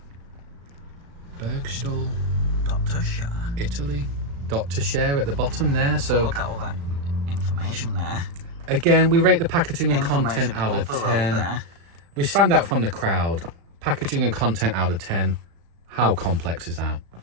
Bergstall. Dr. Share. Italy. Dr. Share at the bottom there. So look at all that information there. Again, we rate the packaging and content out of 10. There. We stand out from the crowd. Packaging and content out of 10. How complex is that?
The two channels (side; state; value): left; late; 35 ms